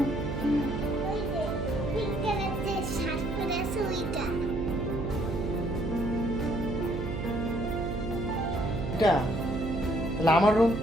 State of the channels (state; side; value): noise; right; hum, 4 dB below the sound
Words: এটা তাহলে আমার রুম।